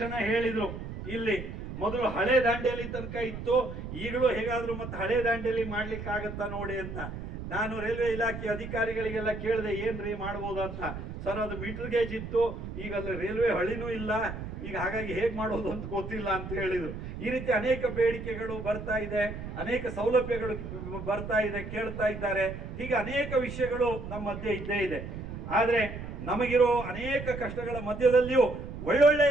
ಹೇಳಿದ್ರು, ಇಲ್ಲಿ ಮೊದಲು ಹಳೆ ದಾಂಡೇಲಿ ತನಕ ಇತ್ತು, ಈಗಲೂ ಹೇಗಾದ್ರೂ ಮತ್ತೆ ಹಳೆ ದಾಂಡೇಲಿ ಮಾಡ್ಲಿಕ್ಕೆ ಆಗತ್ತಾ ನೋಡಿ ಅಂತ. ನಾನು ರೈಲ್ವೆ ಇಲಾಖೆ ಅಧಿಕಾರಿಗಳಿಗೆಲ್ಲ ಕೇಳಿದೆ, ಏನ್ರಿ ಮಾಡ್ಬೋದು ಅಂತ. ಸರ್, ಅದು ಮೀಟರ್ ಗೇಜ್ ಇತ್ತು, ಈಗ ಅಲ್ಲಿ ರೈಲ್ವೆ ಹಳಿನೂ ಇಲ್ಲ, ಈಗ ಹಾಗಾಗಿ ಹೇಗ್ ಮಾಡೋದು ಅಂತ ಗೊತ್ತಿಲ್ಲ ಅಂತ ಹೇಳಿದ್ರು. ಈ ರೀತಿ ಅನೇಕ ಬೇಡಿಕೆಗಳು ಬರ್ತಾ ಇದೆ, ಅನೇಕ ಸೌಲಭ್ಯಗಳು ಬರ್ತಾ ಇದೆ, ಕೇಳ್ತಾ ಇದ್ದಾರೆ. ಹೀಗೆ ಅನೇಕ ವಿಷಯಗಳು ನಮ್ಮ ಮಧ್ಯೆ ಇದ್ದೇ ಇದೆ. ಆದ್ರೆ ನಮಗಿರೋ ಅನೇಕ ಕಷ್ಟಗಳ ಮಧ್ಯದಲ್ಲಿಯೂ ಒಳ್ಳೊಳ್ಳೆ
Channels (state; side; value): noise; right; rumble, 8 dB below the sound